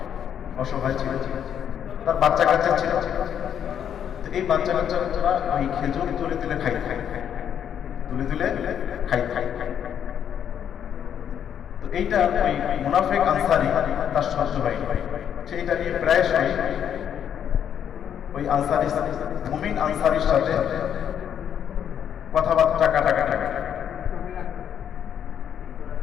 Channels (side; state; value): right; quieter; 9.0 dB